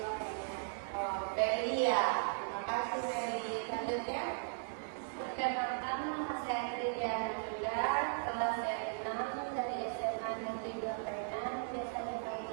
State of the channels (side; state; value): left; silent; 53 dB below the other